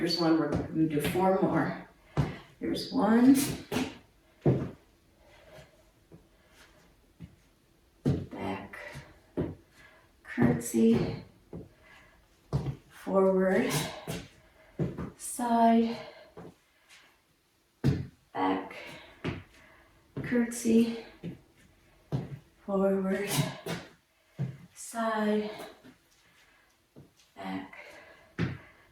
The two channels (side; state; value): both; identical; correlation 1.00